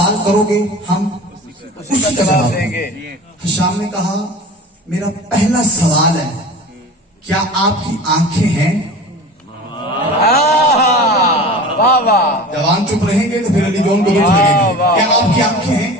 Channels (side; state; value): both; normal; correlation 0.36